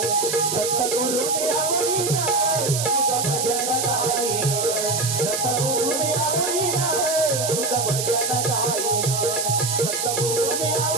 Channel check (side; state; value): right; noise; hiss, 1 dB below the sound